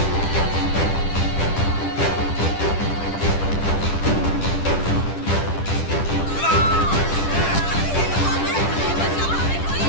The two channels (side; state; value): right; late; 10 ms